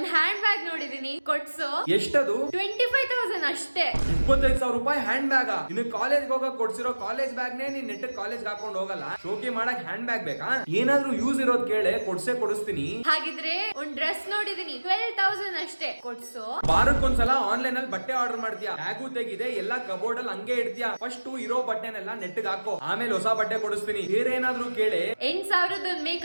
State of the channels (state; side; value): inverted; both; correlation -1.00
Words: ಹ್ಯಾಂಡ್ ಬ್ಯಾಗ್ ನೋಡಿದೀನಿ, ಕೊಡ್ಸು. ಎಷ್ಟದು? 25,000 ಅಷ್ಟೇ. 25,000 ರೂಪಾಯಿ ಹ್ಯಾಂಡ್ ಬ್ಯಾಗ್? ನಿನ್ ಕಾಲೇಜ್ ಹೋಗಕ್ ಕೊಡ್ಸಿರೋ ಕಾಲೇಜ್ ಬ್ಯಾಗ್ ನೇ ನೀನ್ ನೆಟ್ ಕಾಲೇಜ್ ಹಾಕೊಂಡ್ ಹೋಗಲ್ಲ, ಶೋಕಿ ಮಾಡಕ್ ಹ್ಯಾಂಡ್ ಬ್ಯಾಗ್ ಬೇಕಾ? ಏನಾದ್ರೂ ಯೂಸ್ ಇರೋದ್ ಕೇಳೆ, ಕೊಡಿಸ್ತೀನಿ. ಹಾಗಿದ್ರೆ ಒಂದ್ ಡ್ರೆಸ್ ನೋಡಿದೀನಿ, 12,000 ಅಷ್ಟೇ, ಕೊಡ್ಸು. ವಾರಕ್ಕೊಂದ್ಸಲ ಆನ್ಲೈನ್ ಅಲ್ಲಿ ಬಟ್ಟೆ ಆರ್ಡರ್ ಮಾಡ್ತೀಯಾ, ಬ್ಯಾಗು ತೆಗಿದೆ, ಎಲ್ಲಾ ಕಬೋರ್ಡ್ ಅಲ್ಲಿ ಹಂಗೆ ಇಡ್ತೀಯಾ. ಫಸ್ಟ್ ಇರೋ ಬಟ್ಟೆನೆಲ್ಲ ನೆಟ್ಗೆ ಹಾಕೋ, ಆಮೇಲೆ ಹೊಸ ಬಟ್ಟೆ ಕೊಡಿಸ್ತೀನಿ. ಬೇರೆ ಏನಾದ್ರೂ ಕೇಳೆ. 8,000